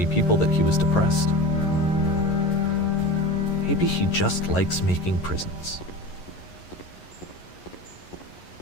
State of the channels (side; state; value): right; late; 11 ms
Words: people that he was depressed. Maybe he just likes making prisons.